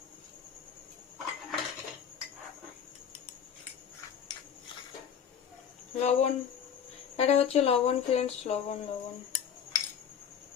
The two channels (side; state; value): right; quieter; 8.0 dB